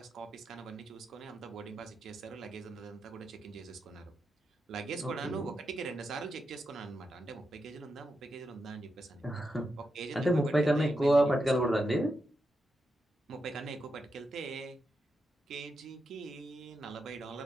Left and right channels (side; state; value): both; normal; correlation 0.86